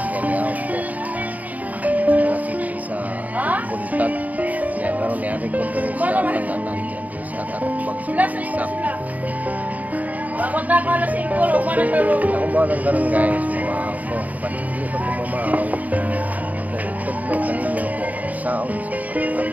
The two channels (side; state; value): left; late; 0.076 ms